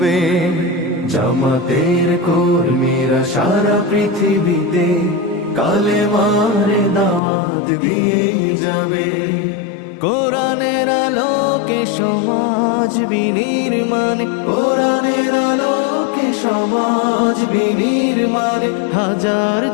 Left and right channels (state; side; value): drops out; right; at 7.2 s